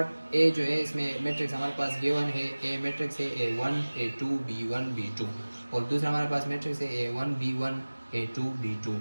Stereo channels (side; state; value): both; inverted; correlation -1.00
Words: ए जो है, इसमें मैट्रिक्स हमारे पास गिवन है, ए मैट्रिक्स है A1 A2 B1 B2 और दूसरा हमारे पास मैट्रिक्स है A1 B1 A2 B2।